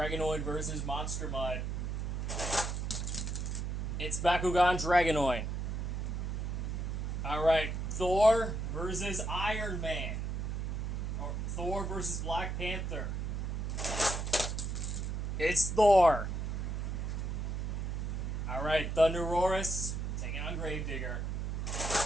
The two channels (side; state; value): right; noise; hum, 2 dB below the sound